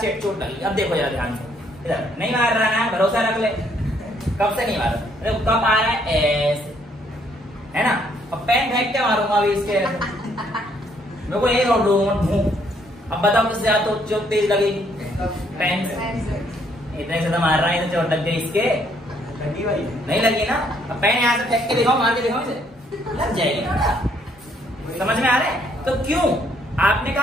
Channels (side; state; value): both; normal; correlation 0.68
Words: चोट लगी, अब देखो जरा ध्यान से, इधर नहीं मार रहा है, भरोसा रख ले, कप से नहीं मार रहा। कप आ रहा है ऐसे, है ना, और पेन फेंक के मारूंगा अभी इसके, मेरे को यही रोड दूं। अब बताओ किससे ज्यादा तो चोट तेज लगेगी? पेन से। इतने से तो मार रहा है, तो चोट लग गई इसके, नहीं लगी ना। अब पेन यहाँ से फेंक के दिखाओ, मार के दिखाओ, इसे लग जाएगी ना। समझ में आ रहा है? तो क्यों आपने